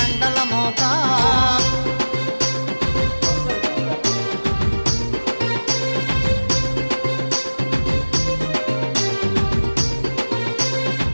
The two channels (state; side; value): inverted; both; correlation -1.00